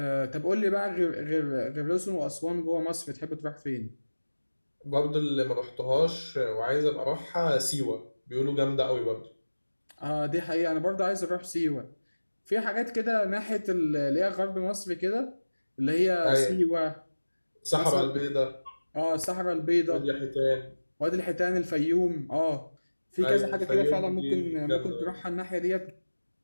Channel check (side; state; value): both; inverted; correlation -1.00